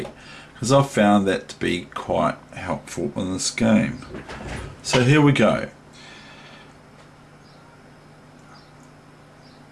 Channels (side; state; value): both; identical; correlation 1.00